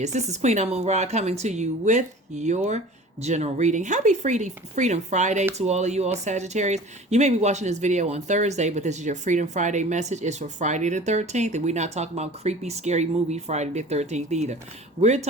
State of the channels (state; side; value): normal; both; correlation 0.42